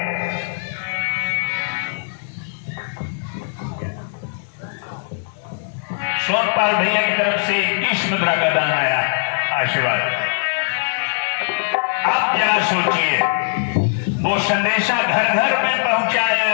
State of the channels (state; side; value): silent; right; 65 dB below the other